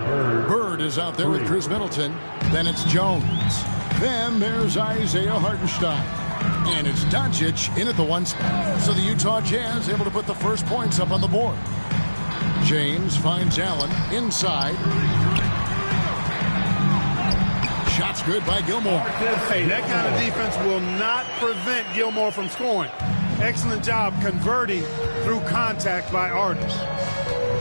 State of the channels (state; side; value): inverted; both; correlation -1.00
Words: Bird is out there with Chris Middleton. Then it's Jones. Then there's Isaiah Hartenstein. And it's Doncic in at the 1 spot. So the Utah Jazz able to put the first points up on the board. James finds Allen inside. Shots good by Gilmore. Hey, that kind of defense will not prevent Gilmore from scoring. Excellent job converting through contact by Artis.